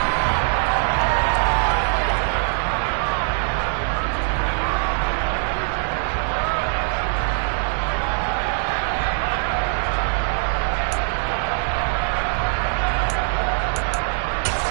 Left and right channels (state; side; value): silent; left; 62 dB below the other